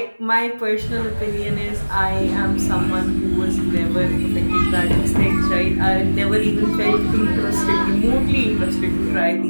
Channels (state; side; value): inverted; both; correlation -1.00